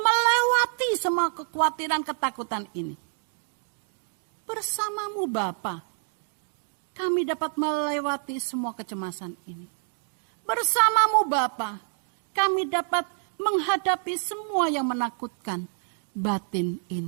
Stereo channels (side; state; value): left; silent; 60 dB below the other